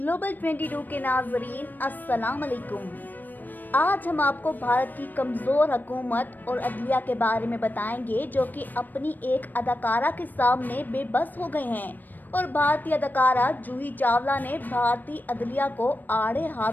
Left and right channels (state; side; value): late; right; 0.089 ms